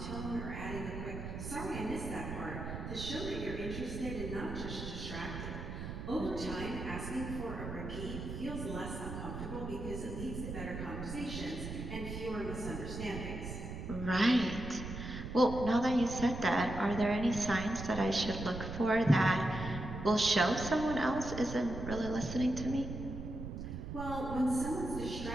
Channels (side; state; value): right; noise; rumble, 7 dB below the sound